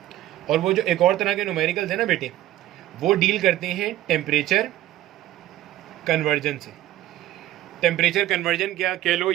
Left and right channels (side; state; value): left; quieter; 14.2 dB